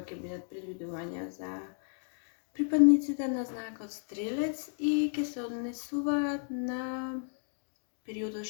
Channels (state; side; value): silent; right; 56 dB below the other